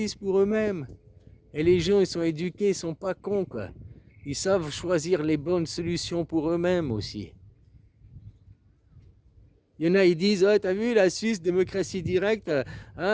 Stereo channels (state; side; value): identical; both; correlation 1.00